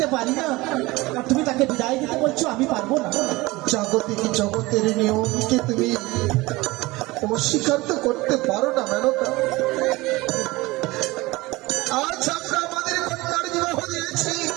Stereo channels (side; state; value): left; quieter; 21.1 dB